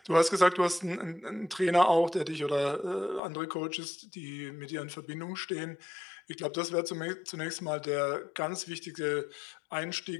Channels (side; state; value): right; drops out; at 3.2 s